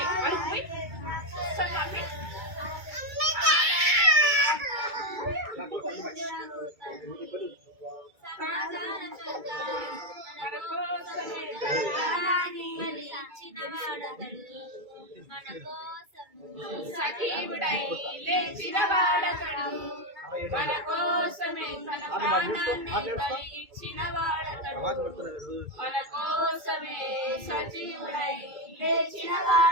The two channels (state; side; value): late; left; 2.3 ms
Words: మన కోసం సజీవుడై లేచిన వాడతడు మన కోసమే తన ప్రాణాన్ని బలి ఇచ్చిన వాడతడు మన కోసమే సజీవుడై లేచిన